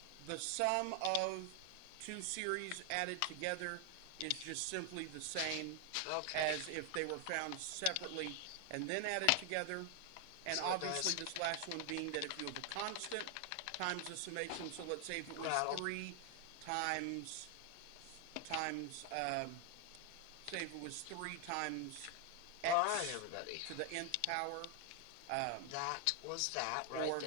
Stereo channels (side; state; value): both; different; correlation 0.00